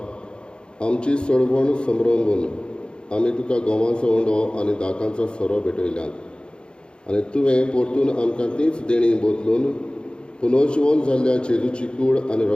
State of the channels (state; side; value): late; right; 0.053 ms